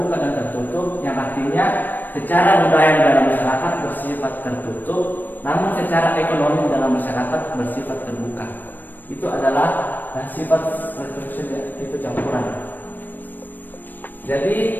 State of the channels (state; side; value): late; right; 0.090 ms